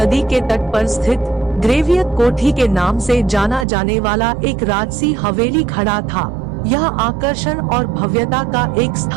के तट पर स्थित ग्रेवियत कोठी के नाम से जाना जाने वाला एक राजसी हवेली खड़ा था। यह आकर्षण और भव्यता का एक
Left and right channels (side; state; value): left; drops out; at 3.7 s